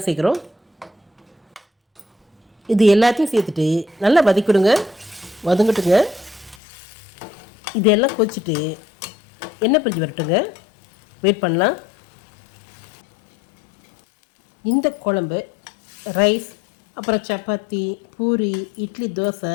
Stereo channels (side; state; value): right; drops out; at 6.6 s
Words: சேர்க்குறோம். இது எல்லாத்தையும் சேர்த்துட்டு நல்லா வதக்கிவிடுங்க. வதங்கட்டுங்க. இதெல்லாம் கொச்சிட்டு எண்ணெய் பிரிஞ்சு வரட்டுங்க. வெயிட் பண்ணலாம். இந்த குழம்பு ரைஸ், அப்புறம் சப்பாத்தி, பூரி, இட்லி, தோசை